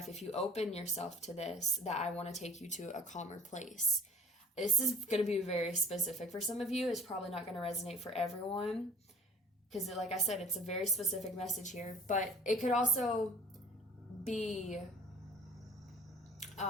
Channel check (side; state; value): both; normal; correlation 0.47